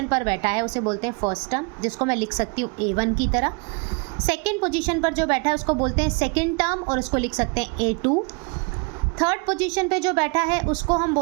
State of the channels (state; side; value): quieter; left; 31.6 dB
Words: पर बैठा है उसे बोलते हैं फर्स्ट टर्म, जिसको मैं लिख सकती हूँ A1 की तरह। सेकंड पोजीशन पर जो बैठा है उसको बोलते हैं सेकंड टर्म, और उसको लिख सकते हैं A2। थर्ड पोजीशन पे जो बैठा है उसको हम